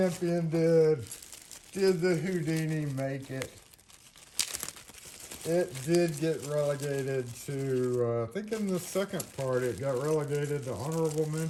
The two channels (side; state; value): both; identical; correlation 1.00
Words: did. Did the Houdini make it? It did get relegated to, I think in the second part, it got relegated to honorable